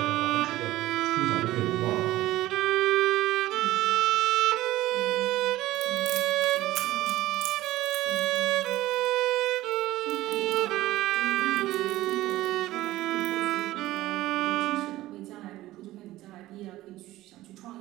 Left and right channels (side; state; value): left; quieter; 16.3 dB